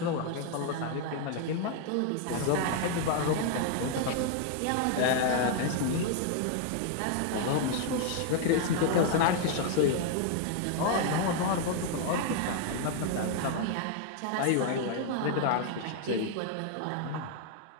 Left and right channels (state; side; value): different; both; correlation 0.00